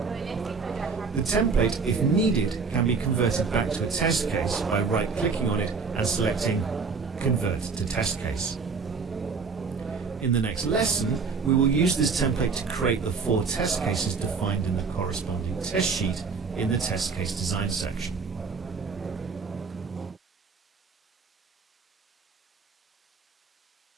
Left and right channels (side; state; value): left; quieter; 5.0 dB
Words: The template, if needed, can be converted back to a test case by right-clicking on it and selecting Convert to Test Case. In the next lesson, we will use this template to create the 4 test cases defined in the corresponding test sheet in the test case design section.